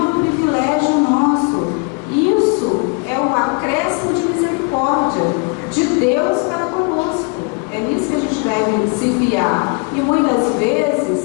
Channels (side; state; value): right; quieter; 32.1 dB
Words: um privilégio nosso, isso é o acréscimo de misericórdia de Deus para conosco. É nisso que a gente deve se fiar. E muitas vezes,